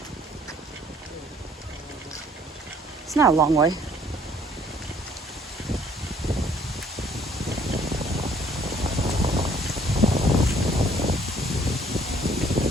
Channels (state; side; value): normal; both; correlation 0.60